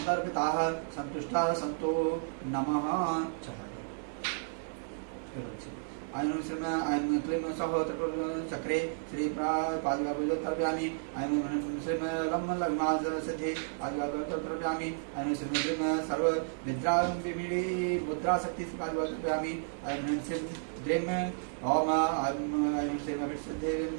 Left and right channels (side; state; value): left; silent; digital silence